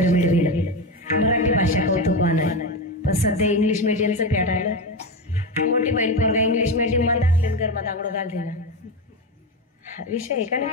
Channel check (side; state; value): both; normal; correlation 0.16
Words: मिळविल. मराठी भाषा कौतुकवान, पण सध्या इंग्लिश मीडियमचं पेटायला. मोठी बहीण पोरगा इंग्लिश मीडियम मध्ये टाकले, घरमा दांगडो घालते ना. विषय आहे का नाही?